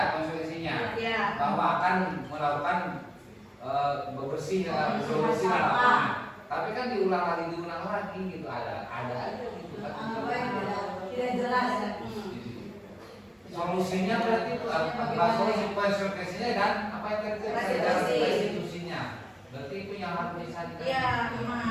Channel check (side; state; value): both; identical; correlation 1.00